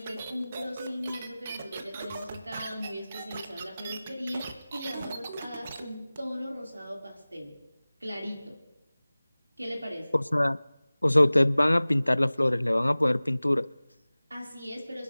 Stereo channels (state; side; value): inverted; both; correlation -0.98